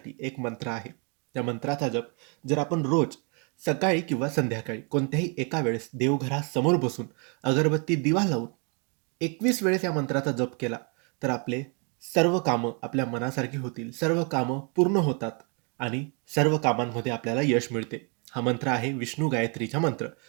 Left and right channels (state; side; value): quieter; left; 34.3 dB